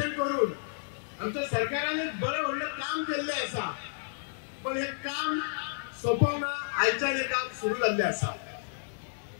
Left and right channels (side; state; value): right; silent; digital silence